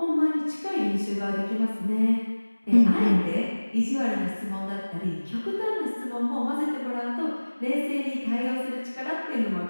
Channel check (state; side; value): inverted; both; correlation -1.00